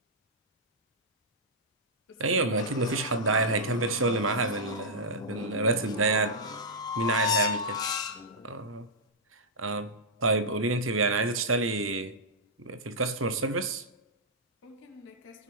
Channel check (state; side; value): normal; both; correlation -0.10